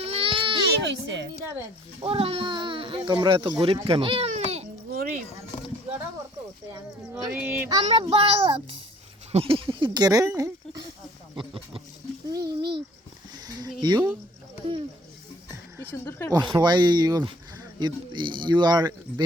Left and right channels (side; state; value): both; normal; correlation 0.56